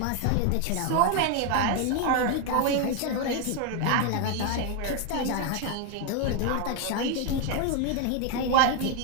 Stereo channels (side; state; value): both; different; correlation 0.01